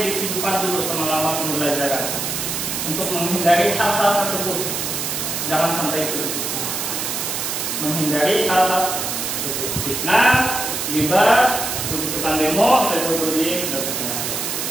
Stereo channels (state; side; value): noise; right; hiss, 2 dB below the sound